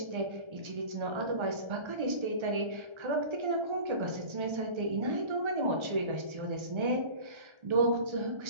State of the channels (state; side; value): late; left; 1.3 ms